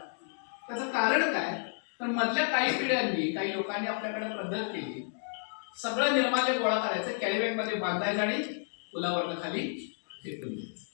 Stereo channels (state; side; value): silent; right; digital silence